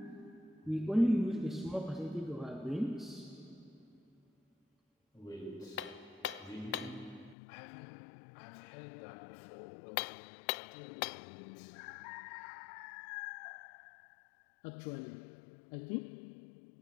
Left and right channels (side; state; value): right; drops out; at 7.4 s